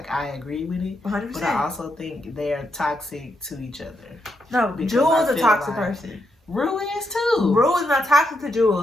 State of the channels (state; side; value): normal; both; correlation 0.81